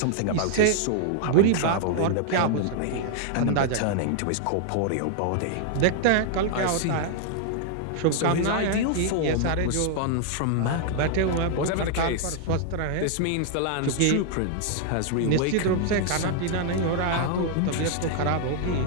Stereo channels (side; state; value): both; different; correlation 0.00